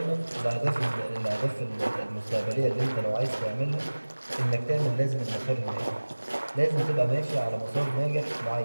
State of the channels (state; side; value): inverted; both; correlation -1.00